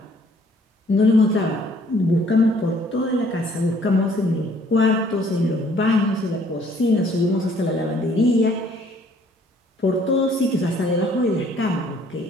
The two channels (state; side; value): normal; both; correlation 0.60